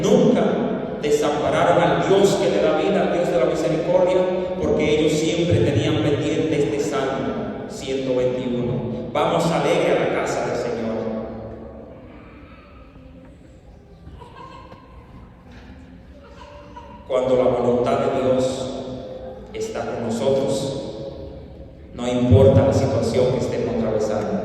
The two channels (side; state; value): both; identical; correlation 1.00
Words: nunca desampararon al Dios que le da vida, al Dios de la misericordia, porque ellos siempre tenían pendiente este Salmo 121. Vamos alegre a la casa del Señor. Cuando la voluntad de Dios está con nosotros, no importa la situación que estemos atravesando,